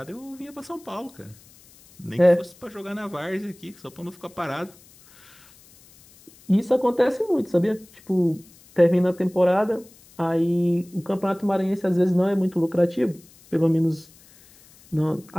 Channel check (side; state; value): left; noise; hiss, 26 dB below the sound